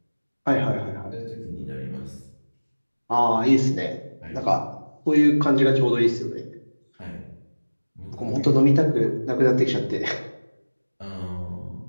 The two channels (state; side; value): inverted; both; correlation -1.00